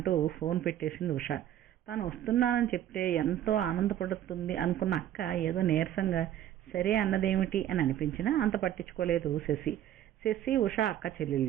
ఫోన్ పెట్టేసింది ఉష. తాను వస్తున్నానని చెప్తే ఎంతో ఆనందపడుతుంది అనుకున్న అక్క ఏదో నీరసంగా సరే అన్నదేమిటి అని అనిపించినా అంత పట్టించుకోలేదు శశి ఉష అక్క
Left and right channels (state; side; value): quieter; left; 11.5 dB